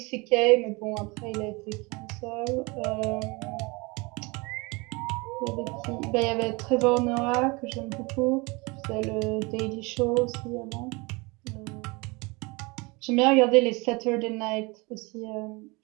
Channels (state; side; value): quieter; left; 26.5 dB